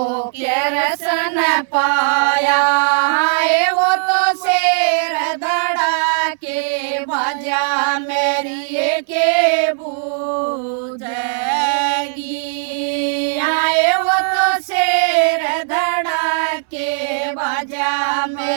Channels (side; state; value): left; silent; digital silence